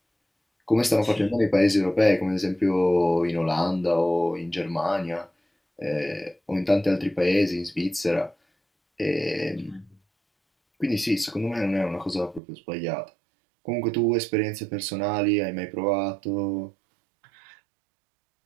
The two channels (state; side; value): drops out; left; at 12.4 s